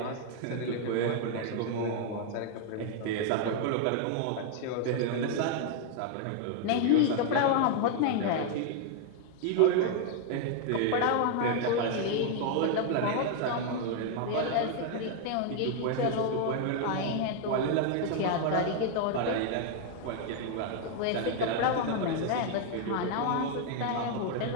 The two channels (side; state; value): both; different; correlation 0.00